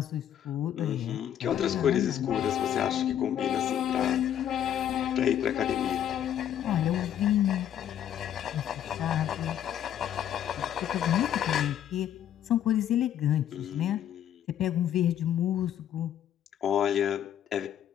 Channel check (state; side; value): quieter; right; 10.3 dB